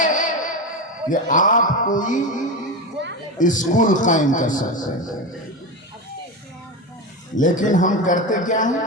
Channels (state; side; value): normal; both; correlation 0.19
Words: کہ آپ کوئی اسکول قائم کر سکتے ہیں۔ لیکن ہم کرتے کیا